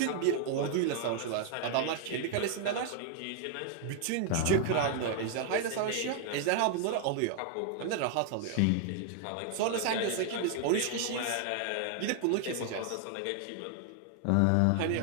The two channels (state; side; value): different; both; correlation 0.00